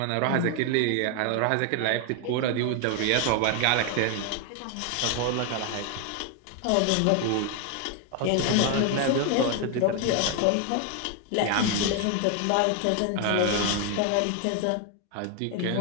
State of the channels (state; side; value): different; both; correlation 0.01